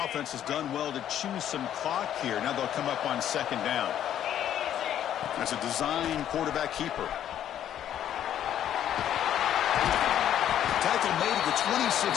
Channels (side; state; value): right; quieter; 10.7 dB